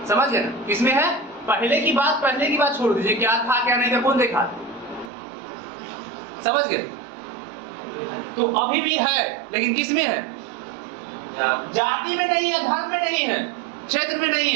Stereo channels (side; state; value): left; drops out; at 5.1 s